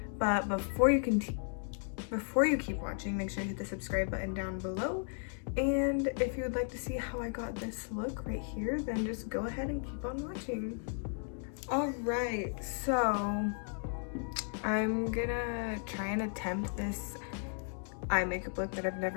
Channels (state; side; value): silent; right; 54 dB below the other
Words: But before you keep watching, make sure you hit the subscribe button down below. And if you would like to see how I got this look right here, then just go ahead and keep on watching. Alright, so I'm gonna try and attempt this eye makeup look that I've